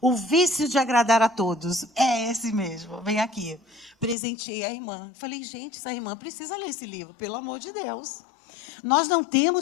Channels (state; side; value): drops out; right; at 4.2 s